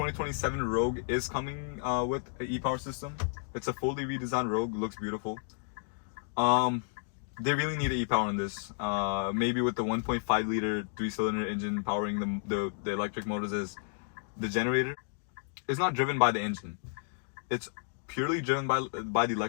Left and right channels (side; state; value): right; silent; digital silence